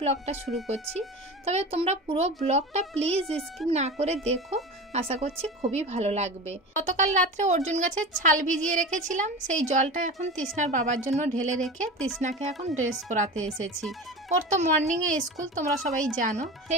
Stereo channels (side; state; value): both; normal; correlation 0.30